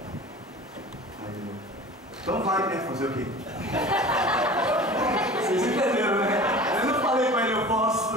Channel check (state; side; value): normal; both; correlation 0.39